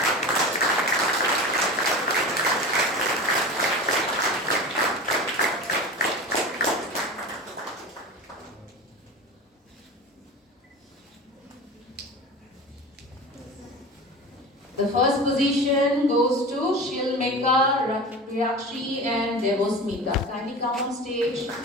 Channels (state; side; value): normal; both; correlation 0.31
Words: The first position goes to Shilmeka, Rakshi and Devosmita. Kindly come on stage.